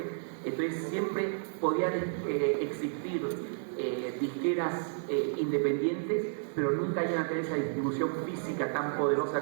Entonces siempre podían existir disqueras independientes, pero nunca iban a tener esa distribución física tan poderosa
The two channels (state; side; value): silent; left; digital silence